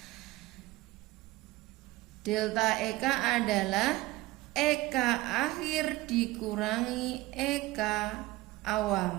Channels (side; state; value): left; quieter; 18.9 dB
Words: Delta EK adalah EK akhir dikurangi EK